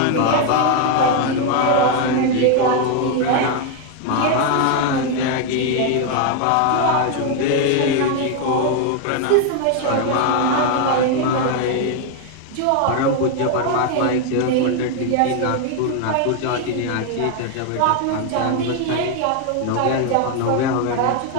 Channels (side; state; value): both; different; correlation 0.01